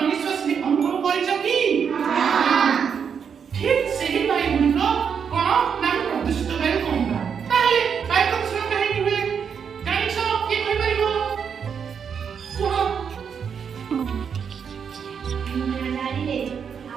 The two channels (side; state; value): left; quieter; 7.0 dB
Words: ଅନୁଭବ କରିଛ କି? ଠିକ୍ ସେହି ବାୟୁ ଗୁଡ଼ିକ କଣ ନା ପ୍ରଦୂଷିତ ବାୟୁ କହିବା। ତାହେଲେ ବାୟୁ ପ୍ରଦୂଷଣ କାହିଁକି ହୁଏ ଜାଣିଛ? କିଏ କହିପାରିବ? କୁହ। ଗାଡ଼ିରେ